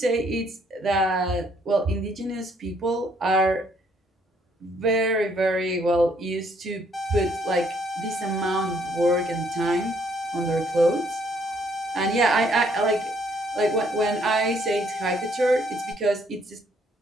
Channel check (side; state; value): both; normal; correlation 0.67